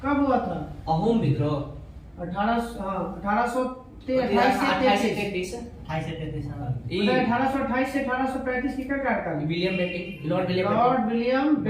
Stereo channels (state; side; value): identical; both; correlation 1.00